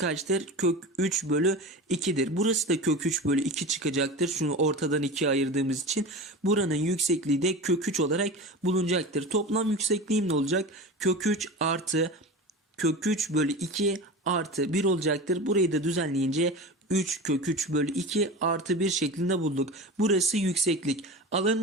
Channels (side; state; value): both; normal; correlation 0.30